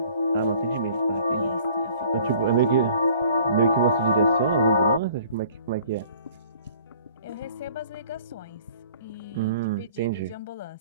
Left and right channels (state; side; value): inverted; both; correlation -0.53